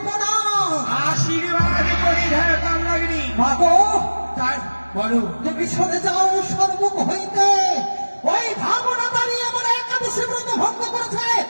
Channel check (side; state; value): both; inverted; correlation -1.00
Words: প্রণাম। আশীর্বাদ করি হে কামনাগিনী। মাগো, তাই বলো, তুমি সরে যাও সর্বমুখ হইতে। ওই ভাবনা দাঁড়িয়ে আমার একাদশী ব্রত ভঙ্গ করেছে,